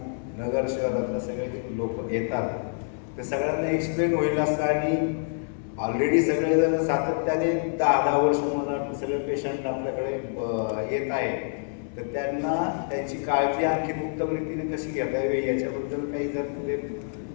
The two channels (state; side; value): silent; right; digital silence